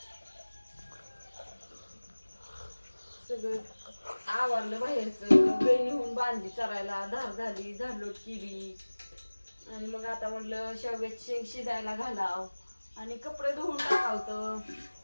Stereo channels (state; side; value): inverted; both; correlation -1.00